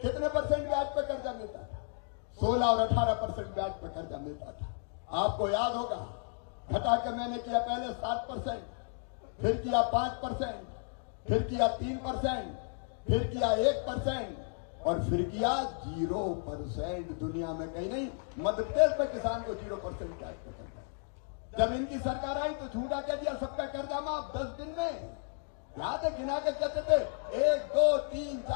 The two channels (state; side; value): silent; right; 56 dB below the other